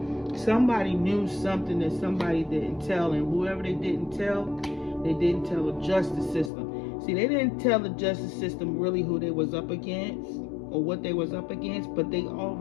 Somebody knew something that somebody didn't tell, and whoever they didn't tell the justice system. See, they didn't tell the justice system really who they was up against or what they was up against, but they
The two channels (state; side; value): drops out; right; at 6.5 s